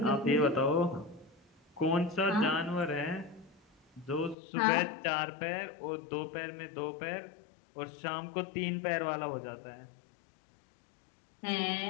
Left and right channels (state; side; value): drops out; right; at 4.4 s